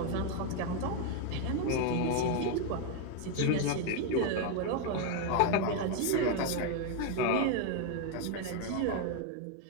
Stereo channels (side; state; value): both; different; correlation 0.01